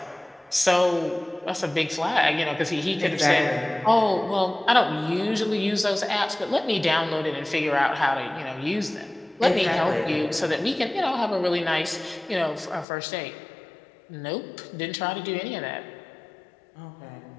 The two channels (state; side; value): drops out; right; at 12.9 s